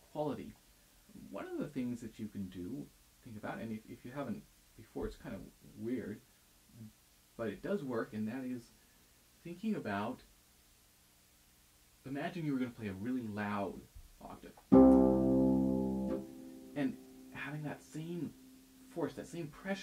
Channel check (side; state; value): both; identical; correlation 1.00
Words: quality. One of the things that you can do, think about, and if you haven't before, it's kind of weird, but it does work, and that is thinking about, imagine you were going to play a really loud octave, and having that same force, that same